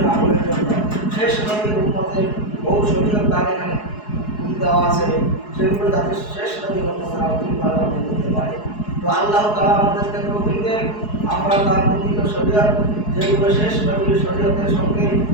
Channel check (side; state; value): right; late; 4.7 ms